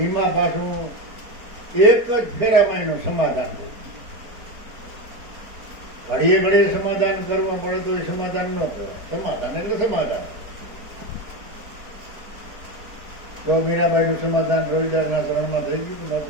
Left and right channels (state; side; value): late; left; 4.4 ms